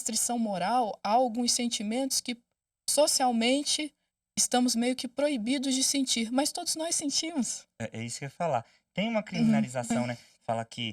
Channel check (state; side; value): identical; both; correlation 1.00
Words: moral, há alguns sentimentos que socialmente estamos meio que proibidos de sentir, mas todos nós sentimos. É isso que eu ia falar. Tem uma Uhum, criminalização, né? Fala